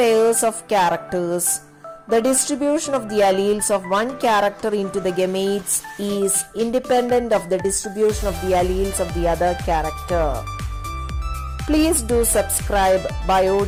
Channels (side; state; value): both; identical; correlation 1.00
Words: of characters, the distribution of the alleles of one character into the gametes is independent of the distribution of the alleles of the other character. Please do subscribe Bio